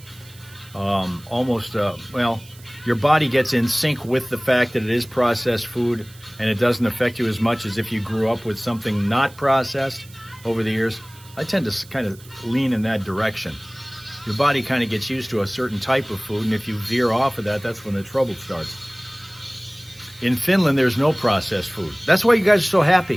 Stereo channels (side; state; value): right; noise; hiss, 23 dB below the sound